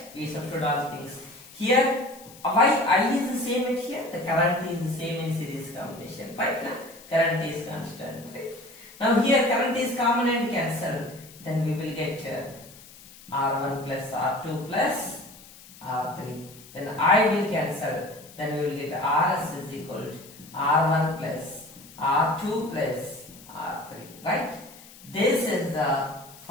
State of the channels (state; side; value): noise; left; hiss, 20 dB below the sound